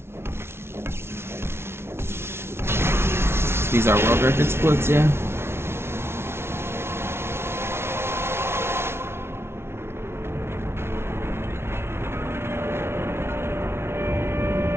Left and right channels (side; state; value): left; late; 0.12 ms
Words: These are world record splits, yeah.